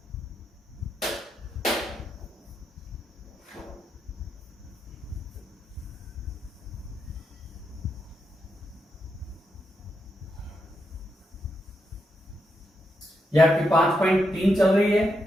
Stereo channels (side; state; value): both; normal; correlation 0.83